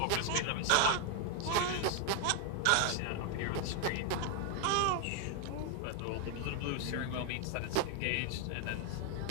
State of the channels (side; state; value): both; different; correlation 0.00